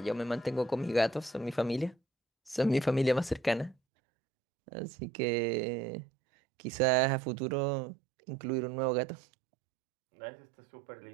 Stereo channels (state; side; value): drops out; left; at 3.8 s